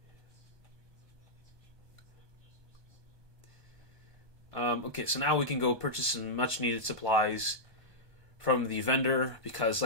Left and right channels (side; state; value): left; late; 1.2 ms